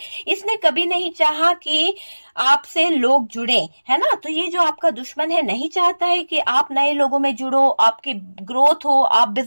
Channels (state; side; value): inverted; both; correlation -1.00